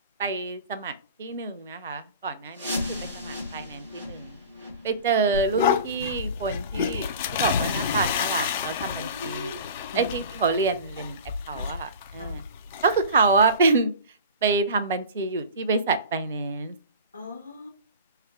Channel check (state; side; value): inverted; both; correlation -0.37